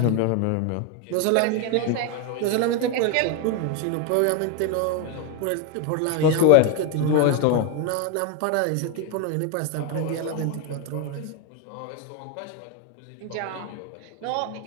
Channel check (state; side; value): different; both; correlation 0.01